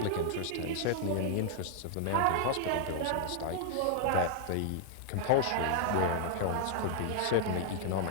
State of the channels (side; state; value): both; different; correlation -0.01